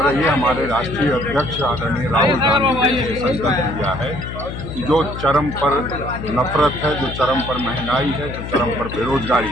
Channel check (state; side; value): noise; left; hum, 8 dB below the sound